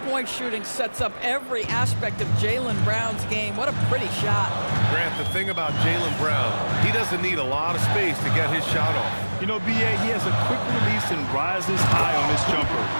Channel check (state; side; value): inverted; both; correlation -1.00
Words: shooting sets up every aspect of Jaylen Brown's game. What a pretty shot. Grant, the thing about Jaylen Brown, he doesn't need a lot of space to get his shot off. You know, B.A., he has a quick release and rises high on his jumper.